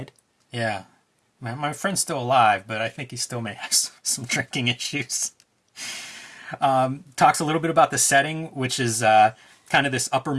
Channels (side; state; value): both; identical; correlation 1.00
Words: Yeah, my friend's still alive, but I think he still may have some drinking issues. Talks a little bit about the setting, which is kind of this upper